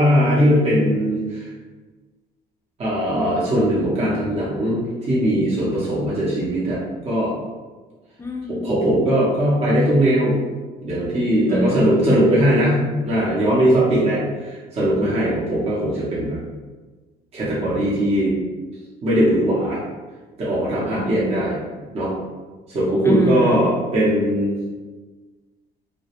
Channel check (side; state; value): both; normal; correlation 0.63